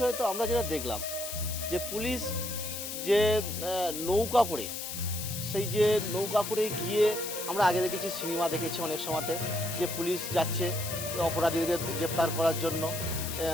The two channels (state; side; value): noise; left; hiss, 6 dB below the sound